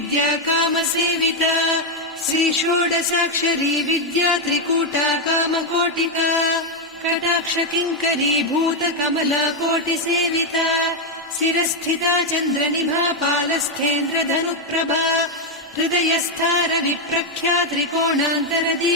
कामसेविता श्रीषोडशाक्षरी विद्या त्रिकूटा कामकोटिका कटाक्षकिङ्करी भूतकमला कोटिसेविता शिरस्थिता चन्द्रनिभा पालस्थेन्द्रधनुप्रभा हृदयस्था रविप्रख्या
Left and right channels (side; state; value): both; normal; correlation 0.01